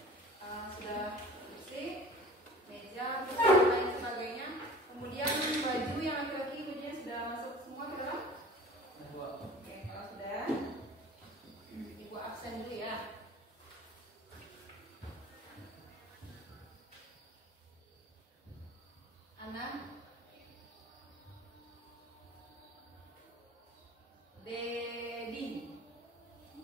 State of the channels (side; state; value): both; normal; correlation 0.42